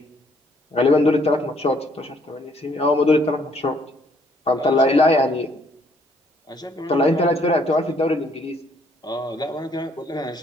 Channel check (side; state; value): both; normal; correlation 0.65